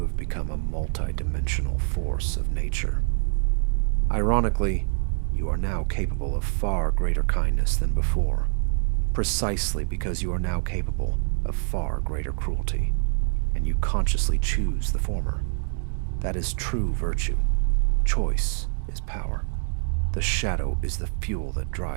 have become a multi-dimensional force of nature. Ironically, you are now capable of far greater kindness than before, precisely because you are now capable of far greater cruelty, and you consciously choose the former. That is true virtue. Choice is power. The shadow is the fuel that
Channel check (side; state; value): left; silent; 61 dB below the other